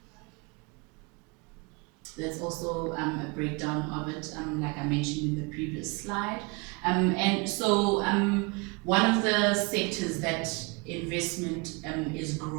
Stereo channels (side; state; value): left; quieter; 29.1 dB